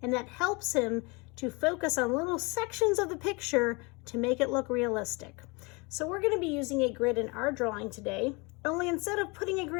and that helps him to focus on little sections of the picture to make it look realistic. So we're going to be using a grid in our drawing today. Only instead of putting a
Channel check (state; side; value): quieter; right; 28.3 dB